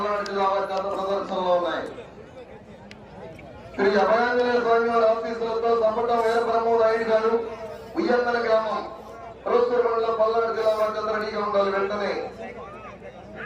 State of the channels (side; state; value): both; identical; correlation 1.00